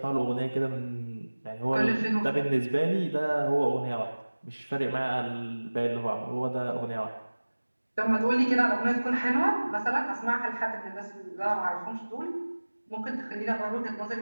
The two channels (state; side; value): inverted; both; correlation -1.00